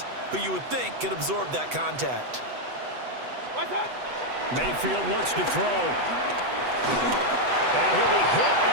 who you would think could absorb that contact. Mayfield looks to throw. And he'll be hit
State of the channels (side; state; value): left; late; 8.0 ms